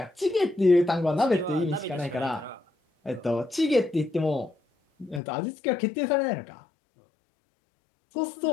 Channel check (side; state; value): right; drops out; at 5.2 s